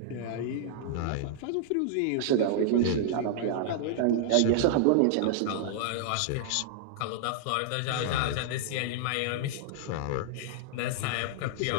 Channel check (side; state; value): both; different; correlation -0.01